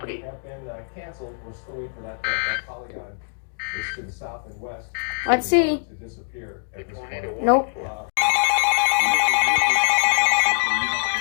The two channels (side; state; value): right; silent; digital silence